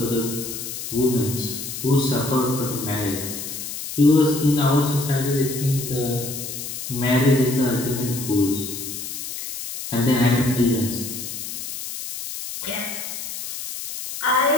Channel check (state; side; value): noise; left; hiss, 7 dB below the sound